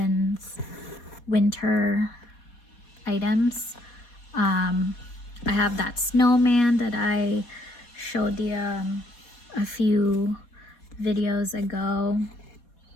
winter items. I have that snowman that I showed you a few videos ago.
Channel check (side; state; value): right; late; 4.2 ms